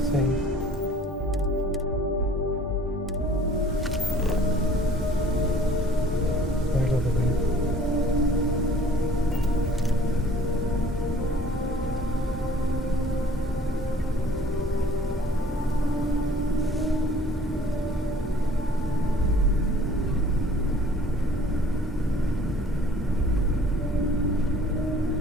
Save. Right over there.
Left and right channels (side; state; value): both; normal; correlation 0.53